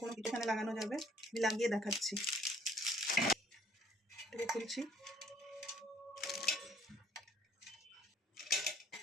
কোনো কিছু এখানে লাগানো যাবে। আমি লাগিয়ে দেখাচ্ছি। এটাকে খুলছি।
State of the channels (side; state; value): both; normal; correlation 0.60